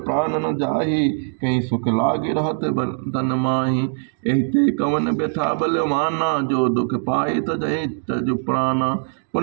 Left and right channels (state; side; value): silent; left; digital silence